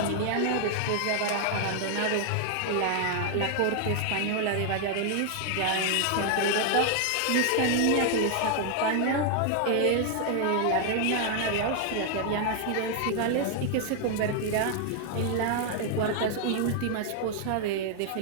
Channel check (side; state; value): both; different; correlation 0.00